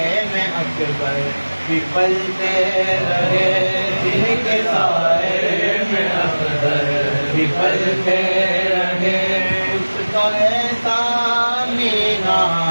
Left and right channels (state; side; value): inverted; both; correlation -1.00